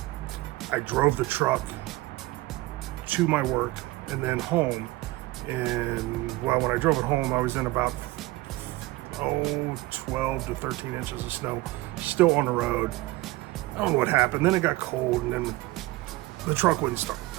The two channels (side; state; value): left; quieter; 19.6 dB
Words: I drove the truck to my work and then home. And well, when I drove it home, I was in about 12 to 13 inches of snow, still on the road. I don't know what happened. Then it got cold, and then the truck wouldn't start.